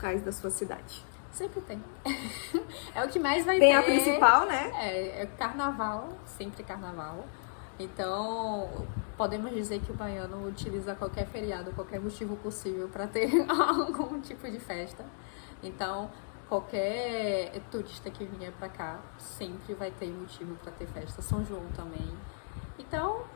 da sua cidade. Sempre tem. É o que mais vai ter. Tem a principal, né? É carnaval, sempre carnaval. Então, podemos dizer que o baiano utiliza qualquer feriado, qualquer motivo possível para ter algum tipo de festa. Então, qualquer turista que vier para cá sempre vai ter motivo para ter festa. São João também. Então,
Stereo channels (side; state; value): right; silent; digital silence